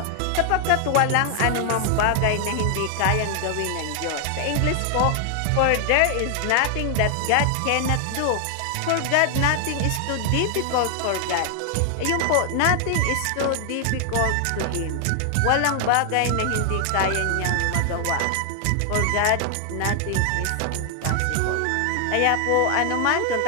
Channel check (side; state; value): both; different; correlation 0.00